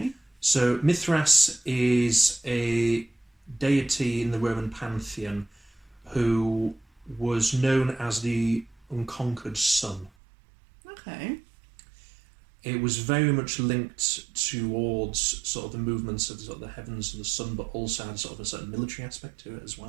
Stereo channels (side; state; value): left; drops out; at 10.1 s